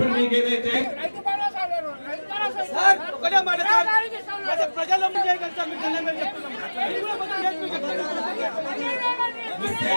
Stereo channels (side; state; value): both; inverted; correlation -1.00